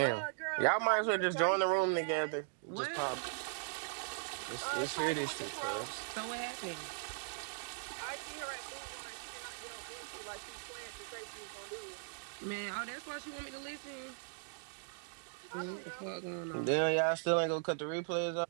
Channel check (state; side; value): silent; left; digital silence